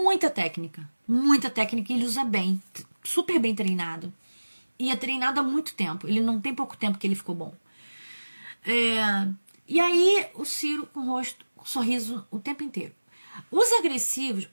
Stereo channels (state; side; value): inverted; both; correlation -1.00